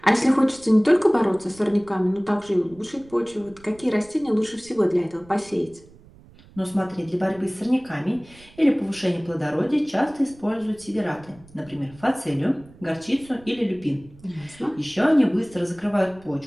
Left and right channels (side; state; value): right; noise; rumble, 24 dB below the sound